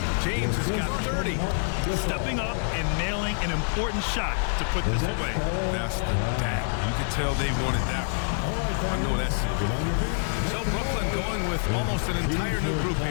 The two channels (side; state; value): right; silent; 61 dB below the other